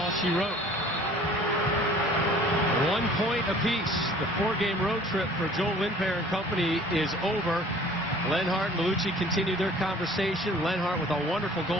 she wrote. 1 point apiece. The 4-game road trip for Joel Lindpair and company is over. Lenhart and Bellucci continue their conversation. Lenhart with a wonderful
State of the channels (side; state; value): both; normal; correlation 0.50